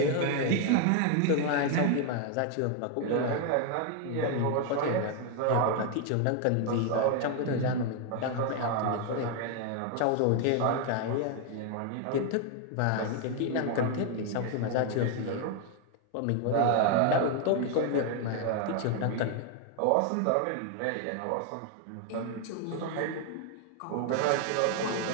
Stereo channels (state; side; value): different; both; correlation 0.01